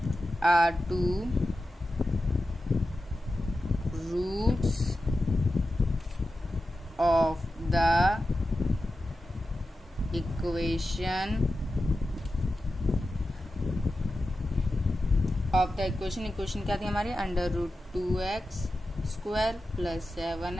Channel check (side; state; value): both; normal; correlation 0.92